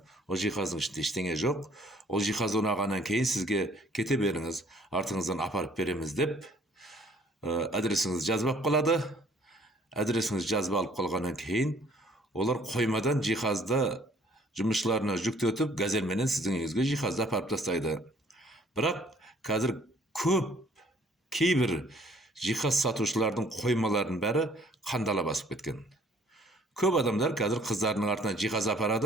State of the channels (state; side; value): normal; both; correlation 0.58